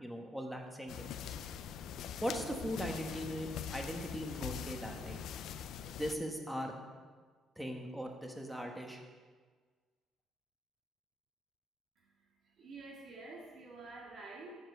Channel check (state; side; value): normal; both; correlation 0.77